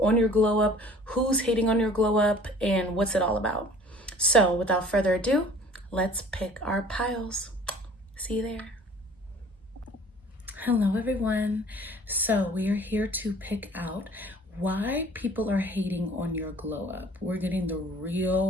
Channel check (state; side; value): normal; both; correlation 0.49